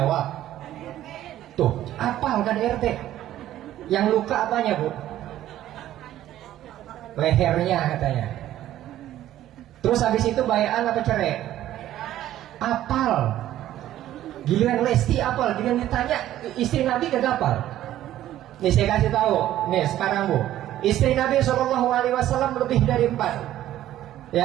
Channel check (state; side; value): quieter; left; 13.0 dB